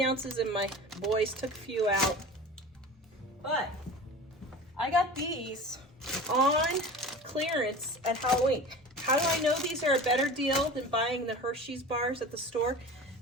ounces and my boys took a few out. But I got these on clearance at Halloween. How do I know these are a better deal than buying the Hershey's bars at the store?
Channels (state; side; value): normal; both; correlation 0.35